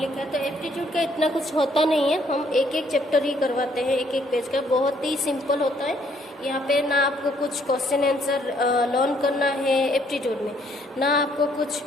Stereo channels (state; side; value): normal; both; correlation 0.67